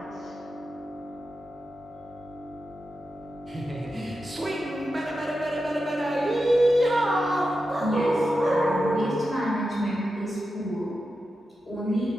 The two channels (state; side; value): normal; both; correlation 0.90